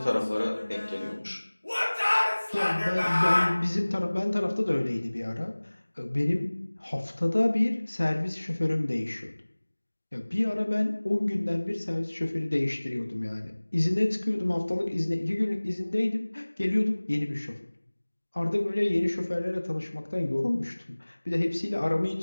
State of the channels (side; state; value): both; inverted; correlation -1.00